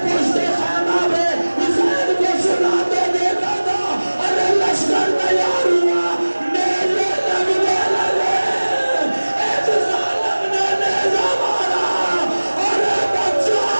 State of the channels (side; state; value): both; inverted; correlation -1.00